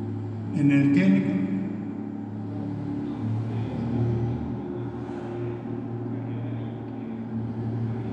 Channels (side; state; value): both; identical; correlation 1.00